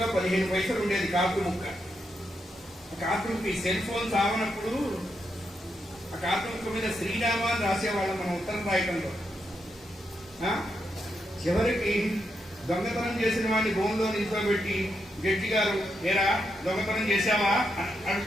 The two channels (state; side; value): normal; both; correlation 0.82